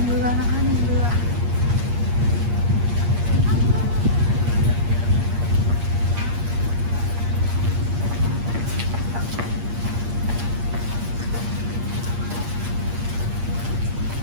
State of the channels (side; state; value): left; late; 8.6 ms